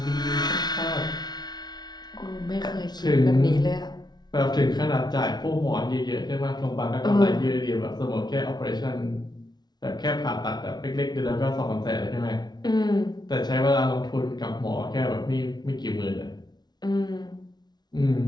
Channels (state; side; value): late; right; 0.20 ms